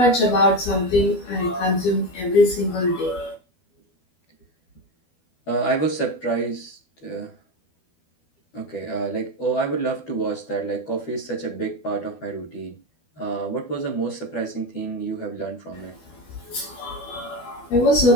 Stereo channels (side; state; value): right; late; 12 ms